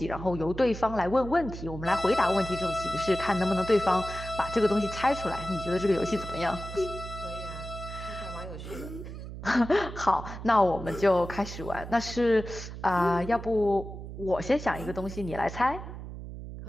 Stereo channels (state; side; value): noise; right; hum, 10 dB below the sound